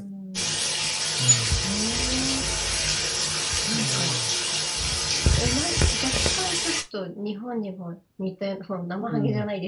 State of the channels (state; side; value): identical; both; correlation 1.00